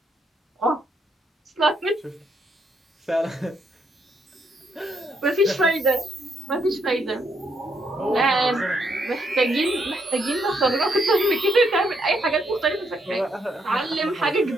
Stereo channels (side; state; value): both; normal; correlation 0.75